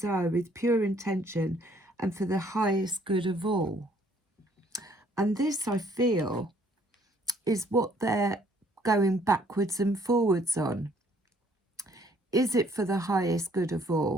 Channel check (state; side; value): normal; both; correlation 0.63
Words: with pure intention and for the highest good of all. And this, I feel, is what they're going backwards and forwards on. Is it for the highest good of